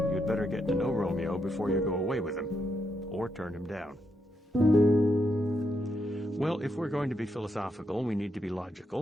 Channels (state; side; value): normal; both; correlation 0.81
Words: You'd better get to know Romeo before you go away with him, or turn him down. Well, if we're going to be philosophical, we need to be